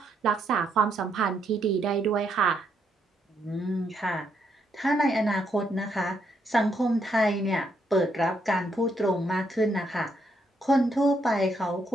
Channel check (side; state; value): both; normal; correlation 0.76